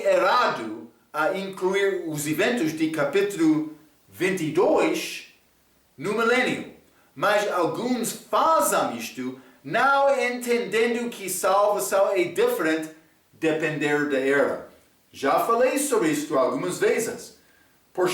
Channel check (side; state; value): both; identical; correlation 1.00